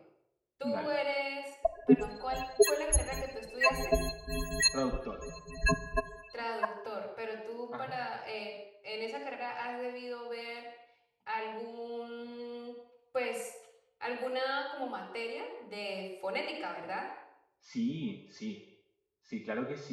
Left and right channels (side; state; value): both; identical; correlation 1.00